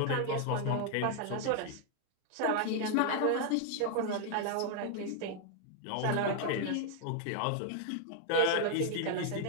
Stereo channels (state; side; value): different; both; correlation 0.00